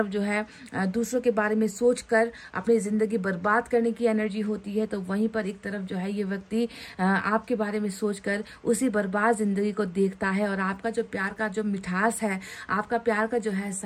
जो है दूसरों के बारे में सोचकर अपनी जिंदगी बर्बाद करने की एनर्जी होती है, तो वहीं पर एक तरफ जो है ये व्यक्ति आपके बारे में सोचकर उसी बर्बाद जिंदगी को देखता है और आपका जो प्यार का जो मिठास है, आपका प्यार का जो है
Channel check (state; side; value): identical; both; correlation 1.00